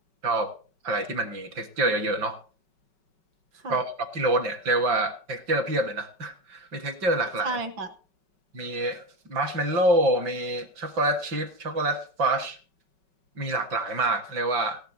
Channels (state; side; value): late; left; 5.3 ms